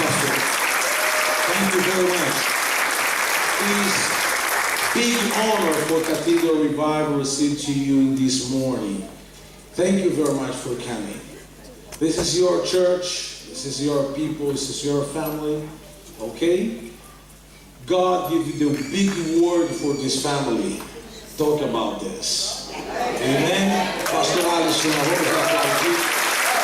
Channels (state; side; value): identical; both; correlation 1.00